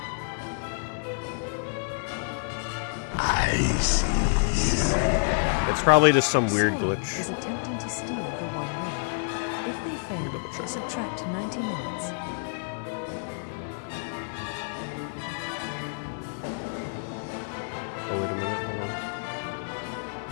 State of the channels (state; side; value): silent; right; 59 dB below the other